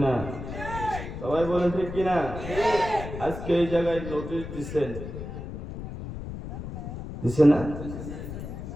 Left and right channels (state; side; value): noise; left; rumble, 8 dB below the sound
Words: সবাই বলেন ঠিক কিনা? আজকে এই জায়গায় নোটিশ দিছে না?